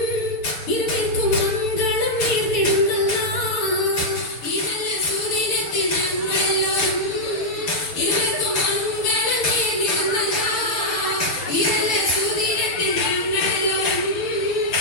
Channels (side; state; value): right; late; 6.4 ms